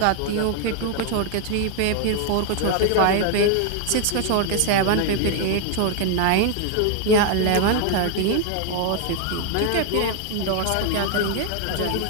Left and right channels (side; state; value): both; different; correlation 0.00